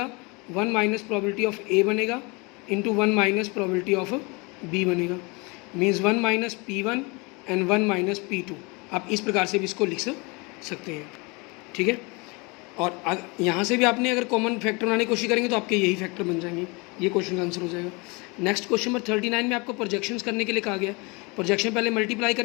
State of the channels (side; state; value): right; quieter; 28.2 dB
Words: 1 माइनस प्रोबेबिलिटी ऑफ A बनेगा into 1 minus probability of B बनेगा, means 1 minus P1 and 1 minus P2। आप इस प्रकार से भी इसको लिख सकते हैं, ठीक है। और यहाँ से भी आपने अगर कॉमन फैक्टर बनाने की कोशिश करेंगे तो आपके यही फैक्टर बन जाएंगे, ये क्वेश्चन का आंसर हो जाएगा। नेक्स्ट क्वेश्चन नंबर 39 में आपको प्रोजेक्शंस करने के लिए कहा गया। प्रोजेक्शन पहले मल्टीप्लाई